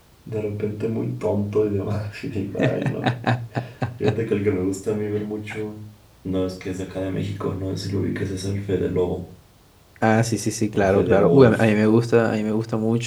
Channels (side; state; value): both; identical; correlation 1.00